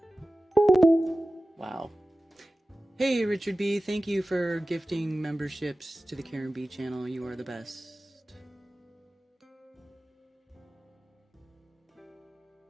Wow. Hey, Richard B. Thank you for gifting memberships to the Karen B channel. You are the best.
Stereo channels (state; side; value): normal; both; correlation 0.95